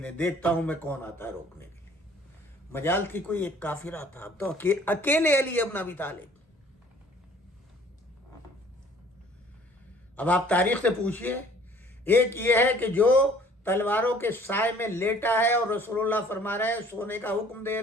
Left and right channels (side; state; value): both; normal; correlation 0.54